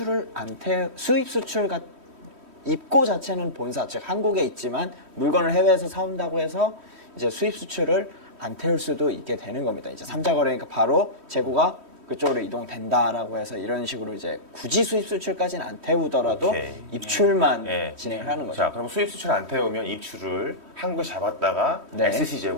수입 수출 입고 자체는 본사 즉 한국에 있지만 물건을 해외에서 사온다고 해서 이제 수입 수출을 안 태울 수도 있게 되는 겁니다. 이제 삼자 거래니까 바로 재고가 그쪽으로 이동된다라고 해서 이런 식으로 이제 굳이 수입 수출까지는 안 태우더라도 오케이. 입출만 예. 진행을 하는 거죠. 자, 그럼 수입 수출 안 태우면 입출을 한국에 잡았다가 네. SC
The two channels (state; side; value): late; left; 3.1 ms